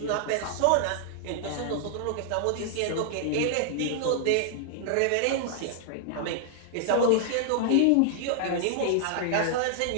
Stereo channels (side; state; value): both; different; correlation 0.00